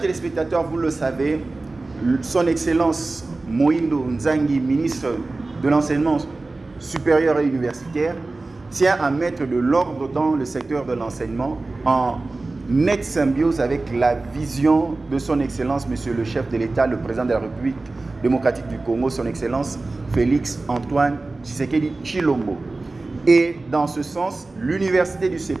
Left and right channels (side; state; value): left; quieter; 3.3 dB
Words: téléspectateurs, vous le savez, son Excellence Moïndo Nzangi, ministre de l'enseignement supérieur et universitaire, tient à mettre de l'ordre dans le secteur de l'enseignement en nette symbiose avec la vision de son Excellence, Monsieur le chef de l'État, le président de la République démocratique du Congo, son Excellence Félix Antoine Tshisekedi Tshilombo. Et dans ce sens, l'université du